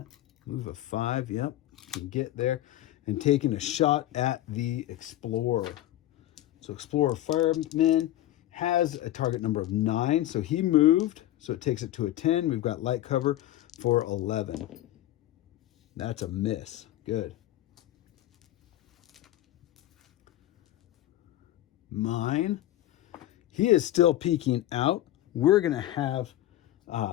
Move a 5. Yep, can get there. And taking a shot at the Explorer. So Explorer Fireman has a target number of 9. So he moved. So it takes it to a 10. We've got light cover for 11. That's a miss. Good. Mine. He is still peeking out. We're going to have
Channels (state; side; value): quieter; right; 14.1 dB